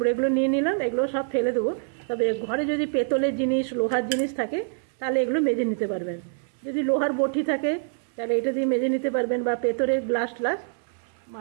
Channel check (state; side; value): silent; left; 61 dB below the other